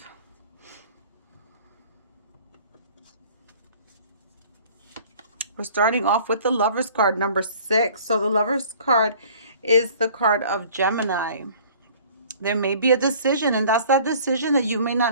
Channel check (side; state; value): both; inverted; correlation -0.50